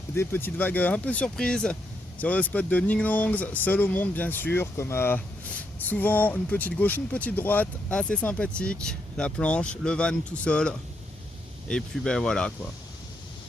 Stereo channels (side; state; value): both; normal; correlation 0.78